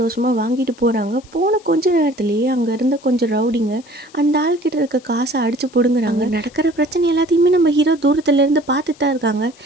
வாங்கிட்டு போகிறாங்க. போன கொஞ்ச நேரத்துலேயே அங்கே இருந்த கொஞ்சம் ரவுடிங்க அந்த ஆள்கிட்ட இருக்க காசை அடித்து பிடுங்குறாங்க. நடக்கிற பிரச்சனை எல்லாத்தையுமே நம்ம ஹீரோ தூரத்துலேருந்து பார்த்துட்டு தான் இருக்காங்க.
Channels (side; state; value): left; noise; hiss, 26 dB below the sound